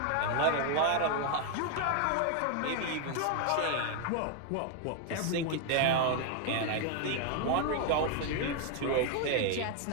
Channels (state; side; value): different; both; correlation 0.01